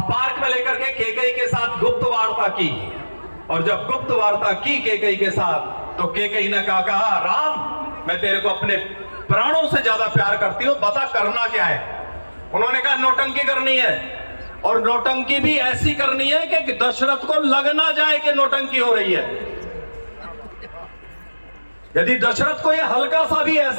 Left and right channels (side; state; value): both; inverted; correlation -1.00